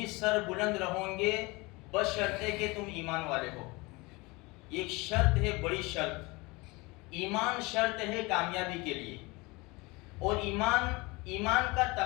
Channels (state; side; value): quieter; right; 24.6 dB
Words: سر بلند رہوں گے بشرطے کہ تم ایمان والے ہو۔ ایک شرط ہے، بڑی شرط، ایمان شرط ہے کامیابی کے لیے۔ اور ایمان کا